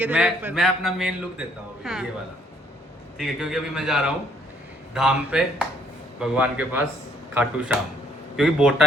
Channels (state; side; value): normal; both; correlation 0.66